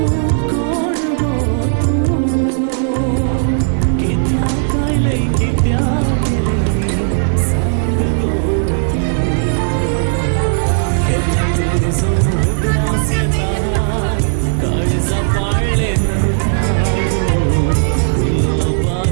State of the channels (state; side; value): silent; left; digital silence